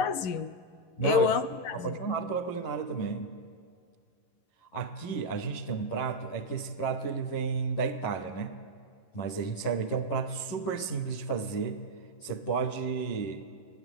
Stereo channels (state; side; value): late; right; 11 ms